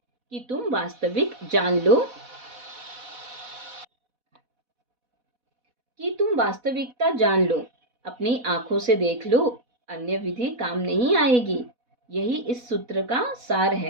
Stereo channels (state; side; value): late; left; 4.1 ms